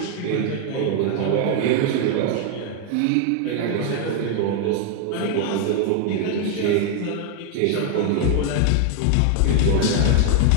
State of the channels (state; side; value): different; both; correlation 0.00